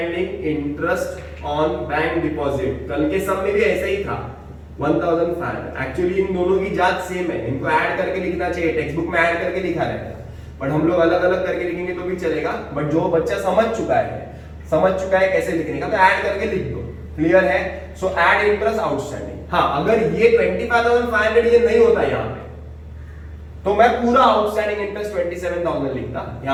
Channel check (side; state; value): both; identical; correlation 1.00